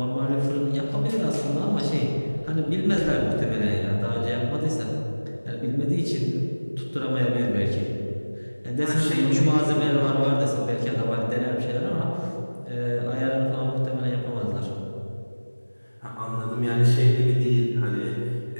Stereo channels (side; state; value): both; inverted; correlation -1.00